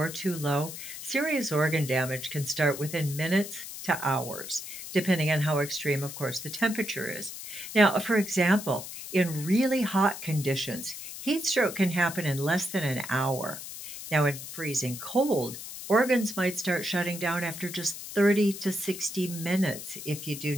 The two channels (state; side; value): noise; left; hiss, 10 dB below the sound